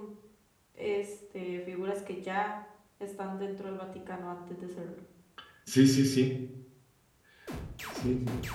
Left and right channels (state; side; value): identical; both; correlation 1.00